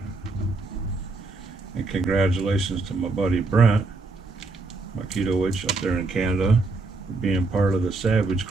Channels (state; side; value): quieter; left; 3.5 dB